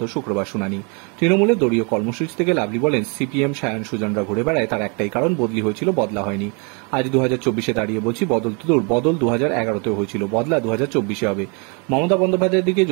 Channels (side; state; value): left; quieter; 34.0 dB